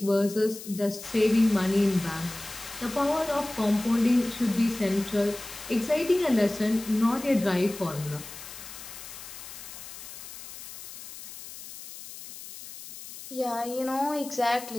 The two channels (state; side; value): noise; left; hiss, 13 dB below the sound